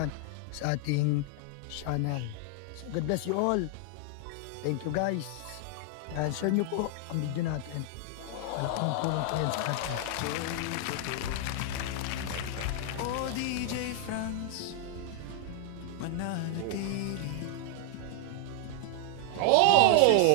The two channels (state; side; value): different; both; correlation -0.01